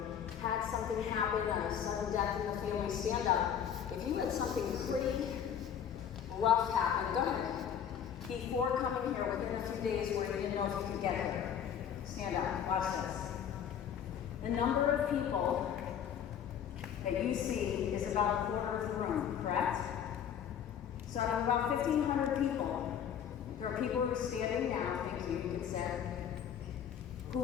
had something happen, a sudden death in the family. Stand up. If you had something pretty rough happen, go ahead. Before coming here, within a few days where you didn't know if you could get here. Stand up, watch this. The number of people that you see is about a quarter of the room, correct? So out of about 1,500 people, there are people who are standing now, thank you, you can say, who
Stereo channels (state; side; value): quieter; right; 8.7 dB